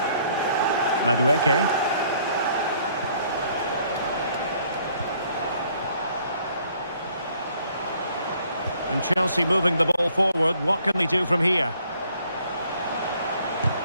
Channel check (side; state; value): both; inverted; correlation -0.63